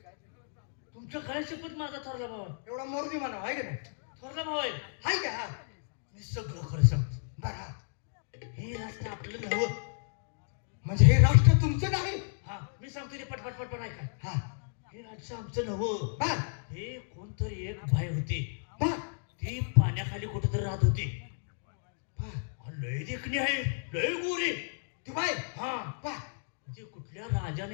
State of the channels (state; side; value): silent; right; digital silence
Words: तुमचं काय शपथ माझा थोरला भाऊ आहे. एवढा मोरदी म्हणा आहे का नाही? थोरला भाऊ आहे. हाय का? हा मी सगळं खरं सांगतो. बरं. हे राष्ट्र आपलं नव्हतं. म्हणजे हे राष्ट्र तुमचं नाही? हा, मी सांगतो ते पटपट पटपट ऐका. हा हे राज्य आमचं नव्हतं. बर हे कोणतरी एक बाई होती, बर ती पाण्याखाली कुठेतरी राहत होती. बर. लय देखणी आहे, लय गोरी. ती बाई. हा, बर. ती कुठल्या